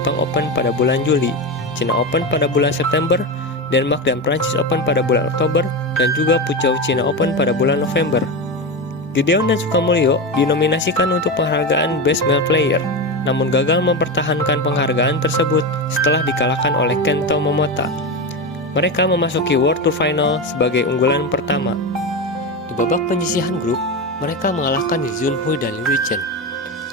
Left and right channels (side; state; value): both; normal; correlation 0.18